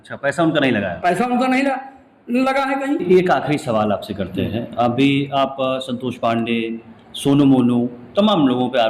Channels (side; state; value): both; identical; correlation 1.00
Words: पैसा उनका नहीं लगाया? पैसा उनका नहीं लगा है कहीं। एक आखिरी सवाल आपसे करते हैं। अभी आप संतोष पांडे, सोनू मोनू, तमाम लोगों पे